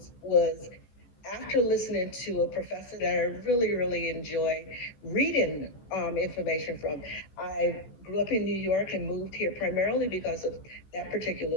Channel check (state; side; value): late; right; 16 ms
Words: was after listening to a professor that I really, really enjoy reading information from. I grew up in New York and moved here primarily because of that